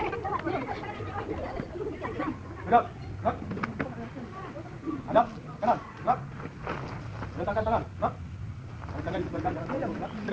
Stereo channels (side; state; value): both; identical; correlation 1.00